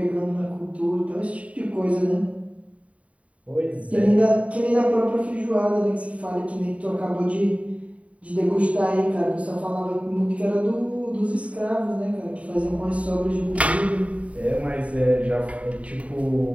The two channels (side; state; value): left; late; 0.066 ms